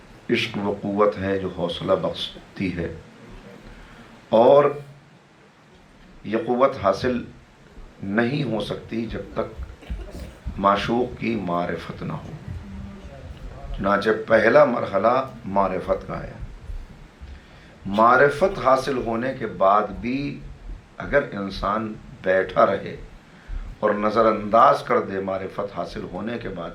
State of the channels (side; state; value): both; identical; correlation 1.00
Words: عشق وہ قوت ہے جو حوصلہ بخشتی ہے، اور یہ قوت حاصل نہیں ہو سکتی جب تک معشوق کی معرفت نہ ہو۔ چنانچہ پہلا مرحلہ معرفت کا ہے۔ معرفت حاصل ہونے کے بعد بھی اگر انسان بیٹھا رہے اور نظر انداز کر دے معرفت حاصل ہونے کے بعد